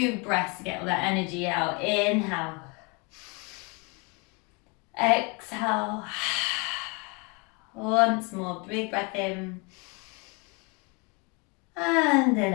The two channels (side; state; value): right; quieter; 30.7 dB